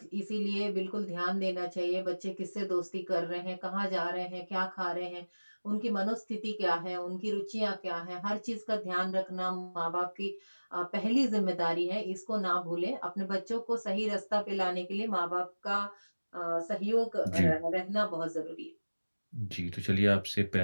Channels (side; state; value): both; inverted; correlation -1.00